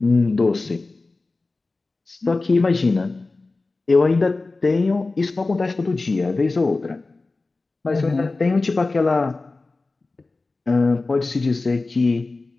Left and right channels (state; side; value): quieter; right; 3.5 dB